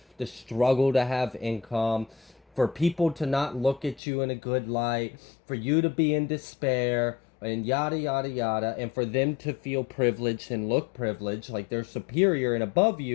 to struggle to have income, for people to not look at you in a good light, for you to be in despair, and yada, yada, yada, and for them to feel privileged and look privileged, like they're superior and above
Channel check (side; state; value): right; drops out; at 4.0 s